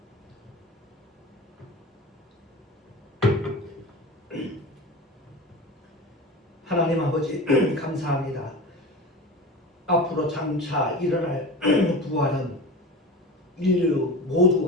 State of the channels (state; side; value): normal; both; correlation 0.31